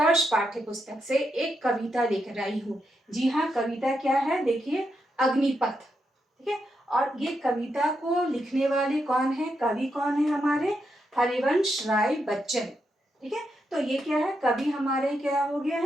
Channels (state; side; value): normal; both; correlation 0.83